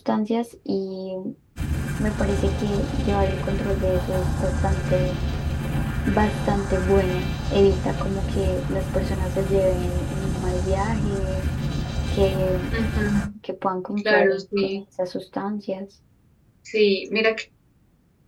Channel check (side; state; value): both; identical; correlation 1.00